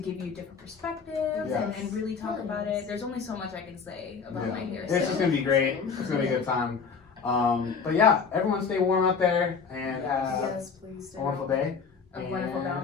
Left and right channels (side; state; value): right; quieter; 5.7 dB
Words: you different perspectives and really talk about it. There's only so much I can say about my hair. It's just going to be great. It's going to be a good time. But yeah, everyone stay warm out there and yes, please do. a wonderful day. A wonderful